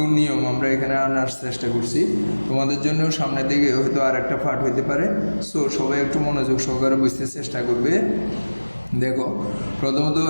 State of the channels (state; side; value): inverted; both; correlation -1.00